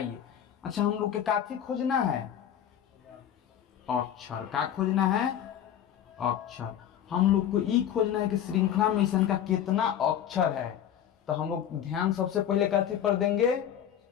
अच्छा हम लोग के काफी खोजना है, अक्षर। का खोजना है, अक्षर। हम लोग को ई खोजना है कि श्रृंखला में इसका कितना अक्षर है। तो हम लोग ध्यान सबसे पहले काफी पर देंगे।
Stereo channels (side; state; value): right; quieter; 9.9 dB